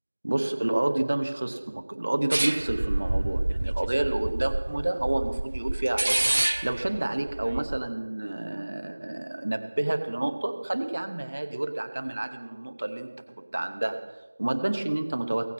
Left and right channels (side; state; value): both; inverted; correlation -1.00